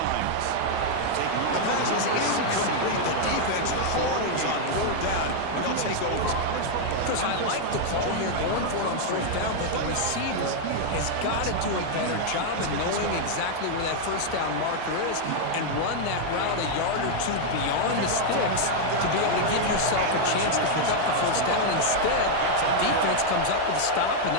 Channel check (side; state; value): both; different; correlation 0.00